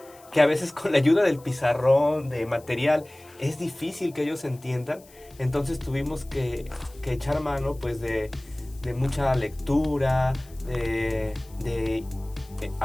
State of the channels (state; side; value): noise; left; hiss, 25 dB below the sound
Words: que a veces con la ayuda del pizarrón, de material, es difícil que ellos entiendan. Entonces tuvimos que echar mano pues de mucha lectura, de